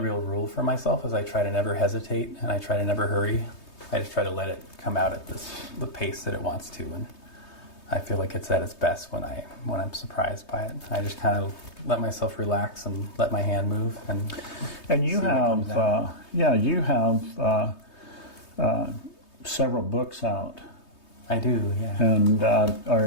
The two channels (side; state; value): right; late; 3.2 ms